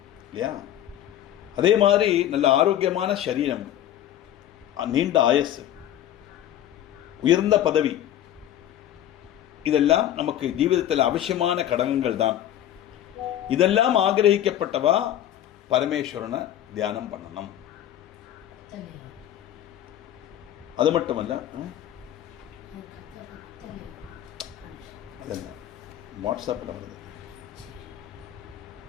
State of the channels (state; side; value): quieter; right; 11.8 dB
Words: இல்லையா? அதே மாதிரி நல்ல ஆரோக்கியமான சரீரம், நீண்ட ஆயஸ், உயர்ந்த பதவி, இதெல்லாம் நமக்கு ஜீவிதத்தில் அவசியமான கடகங்கள் தான். இதெல்லாம் ஆகிரகிக்கப்பட்டவா பரமேஸ்வரனை தியானம் பண்ணணும். அது மட்டுமல்ல, அதெல்லாம் வாட்ஸ்அப்பில் வருது.